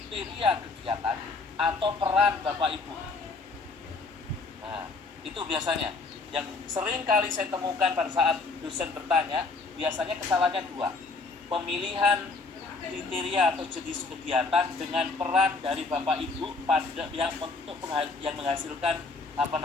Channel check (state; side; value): quieter; right; 3.8 dB